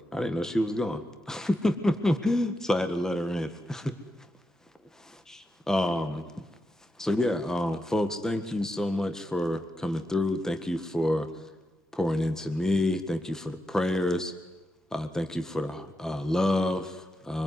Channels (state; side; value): normal; both; correlation 0.86